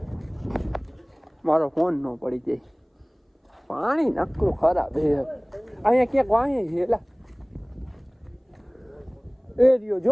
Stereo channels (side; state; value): both; identical; correlation 1.00